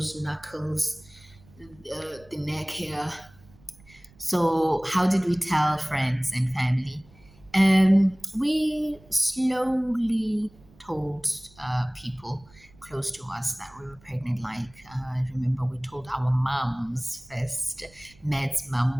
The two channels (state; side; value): noise; right; rumble, 26 dB below the sound